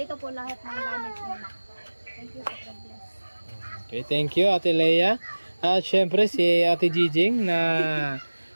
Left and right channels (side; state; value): both; inverted; correlation -1.00